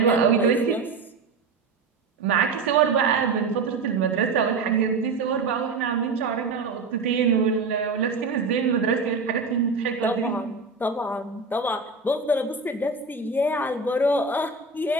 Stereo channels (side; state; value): left; quieter; 4.1 dB